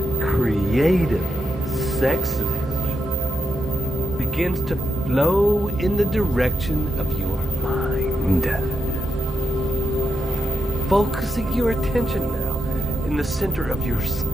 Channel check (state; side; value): normal; both; correlation 0.83